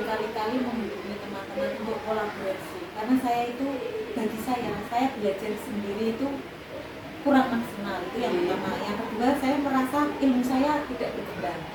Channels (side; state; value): both; identical; correlation 1.00